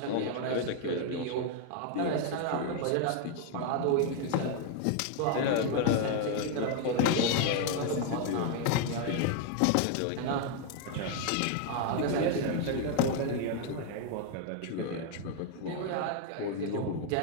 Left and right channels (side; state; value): both; different; correlation 0.00